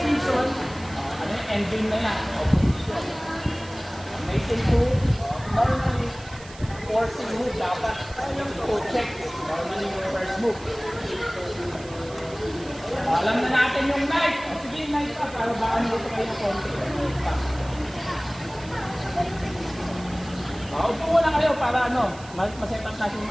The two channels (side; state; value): right; noise; hiss, 19 dB below the sound